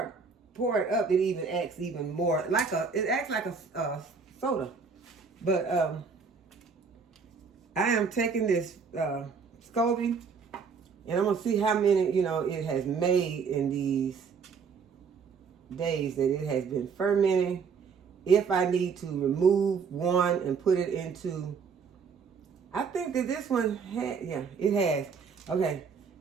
it up, it even acts even more it acts like a soda. But I am taking this SCOBY, and I'm gonna see how many it has made in these days that it has been fermenting. If I need to remove one and put it into, I think that this one it has. Okay,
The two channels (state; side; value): quieter; left; 5.6 dB